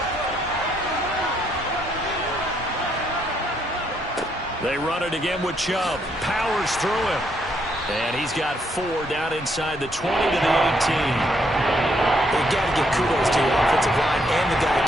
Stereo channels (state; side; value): normal; both; correlation 0.73